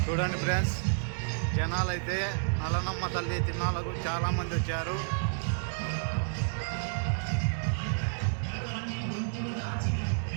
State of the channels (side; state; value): left; silent; digital silence